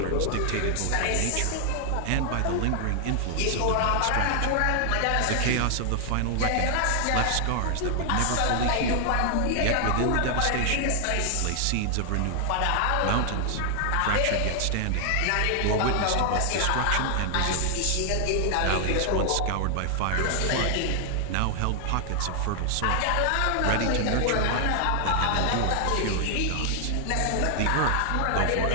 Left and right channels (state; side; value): different; both; correlation 0.00